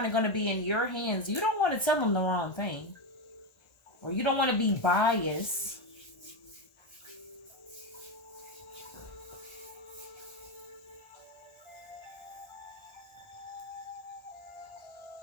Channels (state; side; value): late; right; 1.6 ms